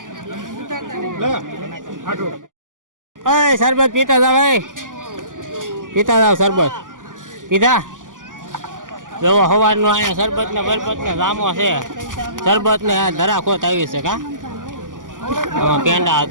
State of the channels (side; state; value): left; late; 0.88 ms